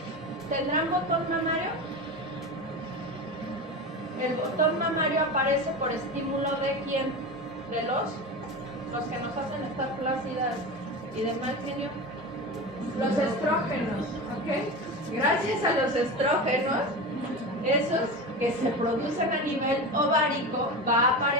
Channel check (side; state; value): both; normal; correlation 0.25